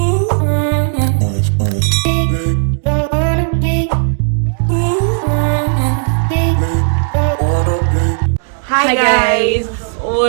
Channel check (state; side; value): silent; left; digital silence